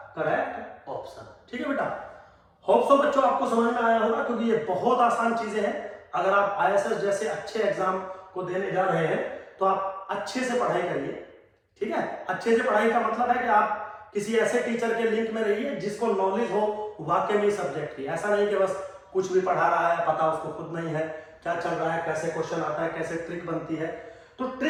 correct option, ठीक है बेटा। होप सो बच्चों आपको समझ में आया होगा, क्योंकि ये बहुत आसान चीजें हैं। अगर आप ISS जैसे अच्छे एग्जाम को देने जा रहे हैं तो आप अच्छे से पढ़ाई करिए, ठीक है। अच्छे से पढ़ाई का मतलब है कि आप किसी ऐसे टीचर के लिंक में रहिए जिसको नॉलेज हो वाकई में सब्जेक्ट की। ऐसा नहीं कि बस कुछ भी पढ़ा रहा है, पता उसको खुद नहीं है क्या चल रहा है, कैसे क्वेश्चन आता है, कैसे ट्रिक बनती है। तो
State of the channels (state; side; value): identical; both; correlation 1.00